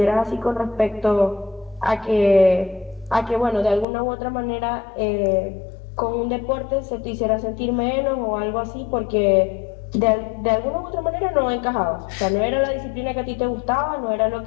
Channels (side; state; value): right; drops out; at 3.9 s